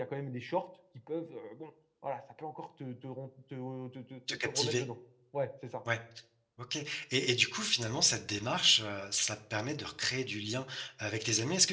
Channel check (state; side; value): identical; both; correlation 1.00